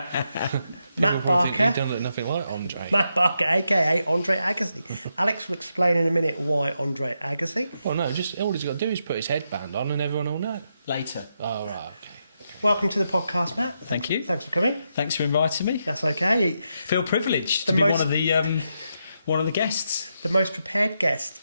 Matt Barker. He don't look nothing like Andre. Matt Barker, aka Andre Agassi. Alex will explain in a minute why Andre Agassi. Well, no, just all he's got to do is put his headband on and everyone will know. Later. Oh, right, okay. Welcome to the podcast, Matt. Thank you. Thanks for coming. Thanks for inviting me. That's okay. Feel privileged to be one of the guests. The most prepared guest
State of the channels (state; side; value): inverted; both; correlation -0.83